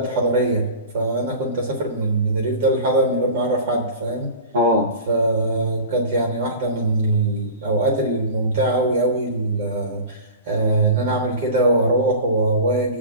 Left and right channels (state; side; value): inverted; both; correlation -0.36